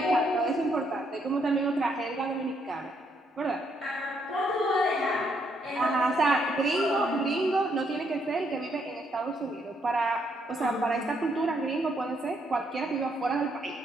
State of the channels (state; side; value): normal; both; correlation 0.74